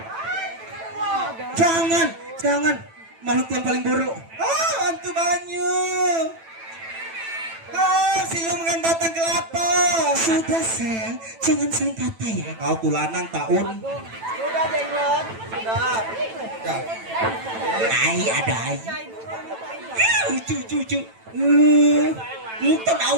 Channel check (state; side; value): late; left; 9.0 ms